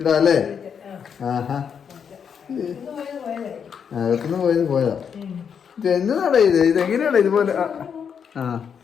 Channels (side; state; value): right; quieter; 7.2 dB